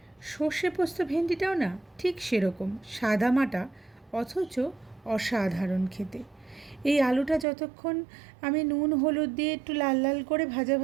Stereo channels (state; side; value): drops out; left; at 7.5 s